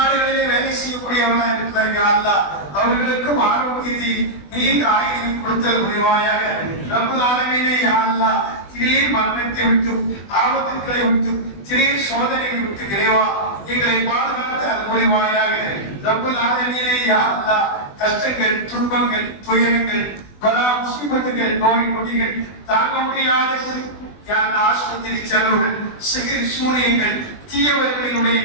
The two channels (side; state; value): right; late; 20 ms